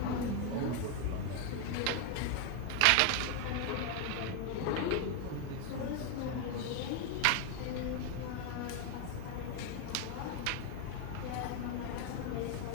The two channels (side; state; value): both; different; correlation 0.01